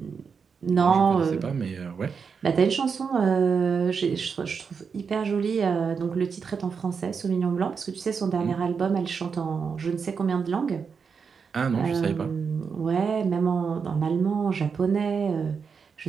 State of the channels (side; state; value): left; quieter; 5.9 dB